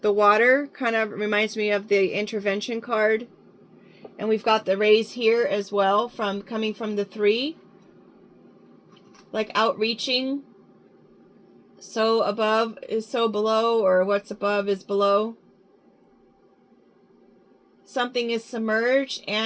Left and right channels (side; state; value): both; identical; correlation 1.00